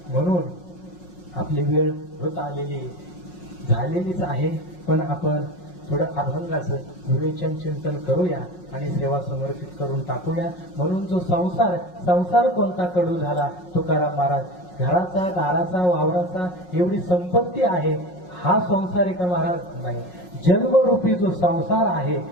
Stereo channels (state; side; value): late; right; 5.4 ms